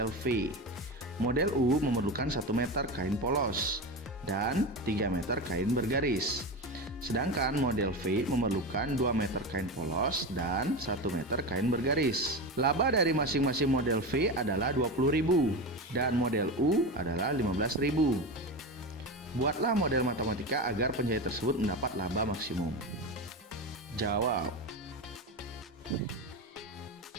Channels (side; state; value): both; normal; correlation 0.21